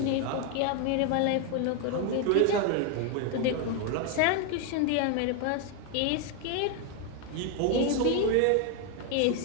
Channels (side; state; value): both; different; correlation 0.01